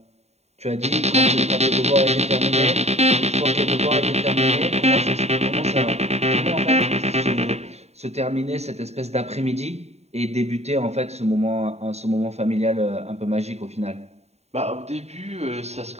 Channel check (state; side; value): late; left; 0.31 ms